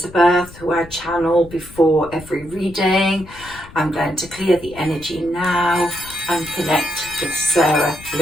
who I channel before every reading. I'm going to clear the energy now and connect with Sarah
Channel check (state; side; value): noise; left; rumble, 19 dB below the sound